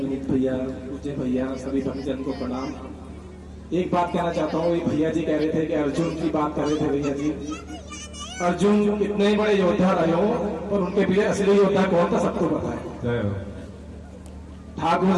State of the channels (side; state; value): both; identical; correlation 1.00